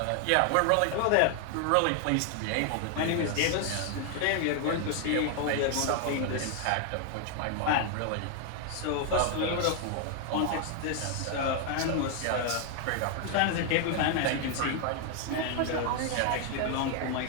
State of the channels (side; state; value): both; different; correlation 0.00